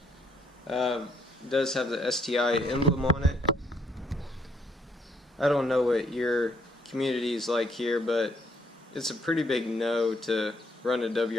It does have the STI emblem on it. I don't know what your community is like here, but it's a pretty big no to run a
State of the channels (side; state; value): both; normal; correlation 0.70